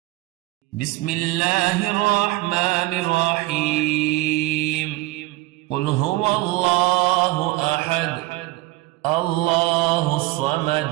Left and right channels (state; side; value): quieter; left; 19.5 dB